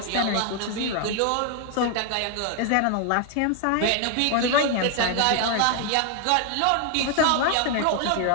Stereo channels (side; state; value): both; different; correlation 0.00